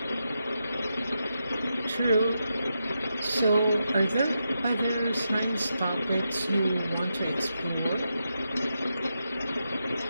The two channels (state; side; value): inverted; both; correlation -0.86